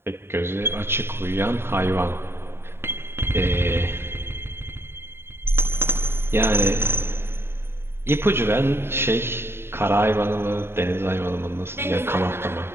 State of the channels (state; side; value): late; left; 0.11 ms